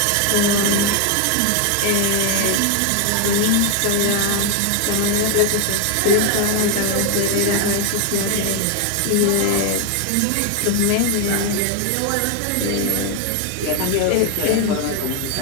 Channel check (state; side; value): different; both; correlation 0.01